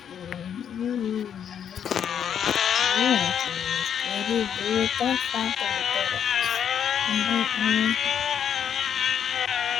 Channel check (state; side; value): quieter; right; 8.6 dB